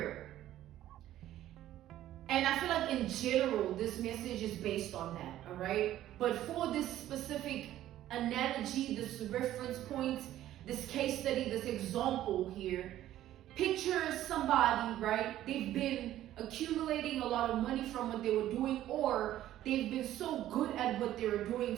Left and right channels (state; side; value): quieter; left; 13.2 dB